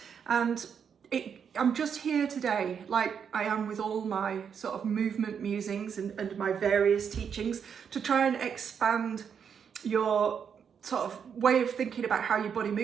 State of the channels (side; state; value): left; quieter; 7.2 dB